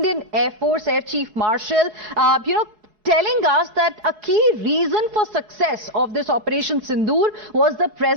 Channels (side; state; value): left; late; 4.7 ms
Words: Air Force Air Chief Marshal, telling us that a key reason for success of this Operation Sindoor was the